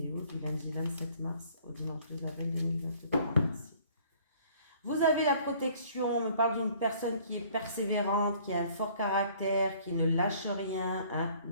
du lundi 27 mars au dimanche 2 avril 2023. Merci. Vous avez la protection, on me parle d'une personne qui est persévérante, qui a un fort caractère, qui ne lâche rien, hein,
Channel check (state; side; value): inverted; both; correlation -0.56